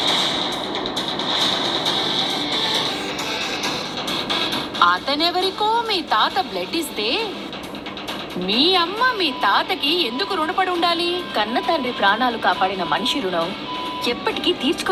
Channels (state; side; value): identical; both; correlation 1.00